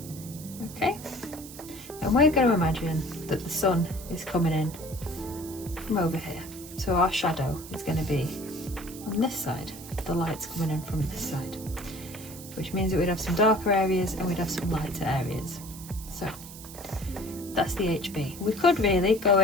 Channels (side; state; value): right; noise; hiss, 15 dB below the sound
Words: Okay? And we're going to imagine that the sun is coming in from over here. So our shadow is going to be on this side, the light's coming in from this side, which means that we'd have some darker areas and we'd have some lighter areas. So that's the HB. We could really go